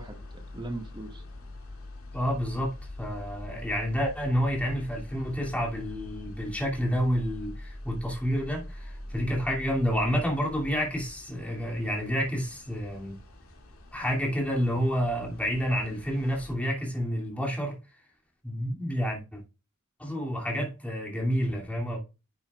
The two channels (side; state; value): both; normal; correlation 0.78